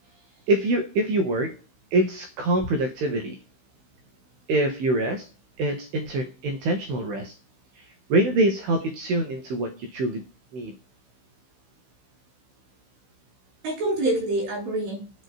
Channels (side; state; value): left; late; 16 ms